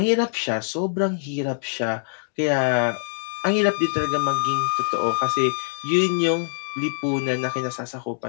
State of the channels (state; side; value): silent; right; digital silence